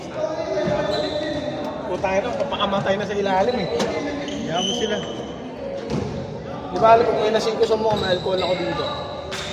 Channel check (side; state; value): both; identical; correlation 1.00